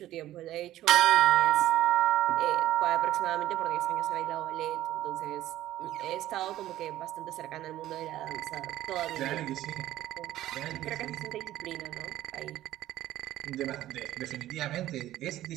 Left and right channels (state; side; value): quieter; left; 14.1 dB